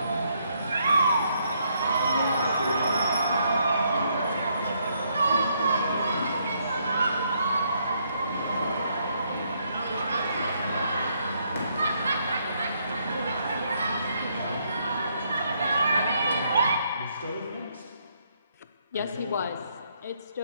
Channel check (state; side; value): inverted; both; correlation -0.73